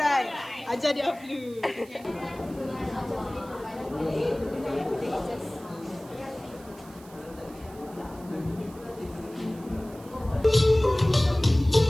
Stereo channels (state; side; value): noise; right; hiss, 23 dB below the sound